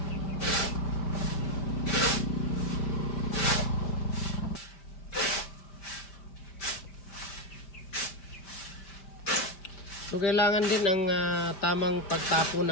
So kailangan din ang tamang pagtapon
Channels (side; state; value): right; late; 5.5 ms